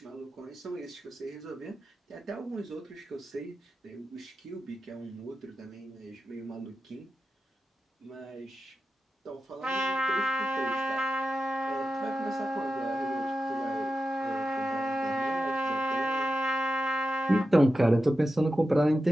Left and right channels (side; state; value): both; normal; correlation 0.91